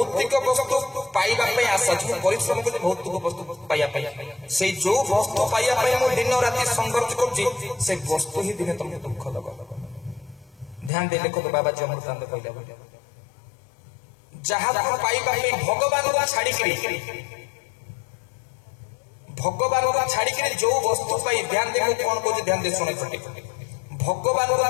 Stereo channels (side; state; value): right; drops out; at 10.9 s